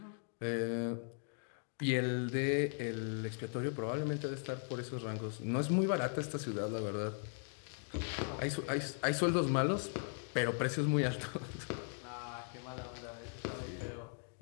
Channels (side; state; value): right; silent; 52 dB below the other